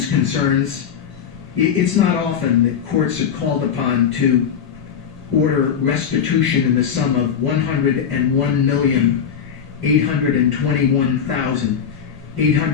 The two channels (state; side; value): quieter; right; 7.7 dB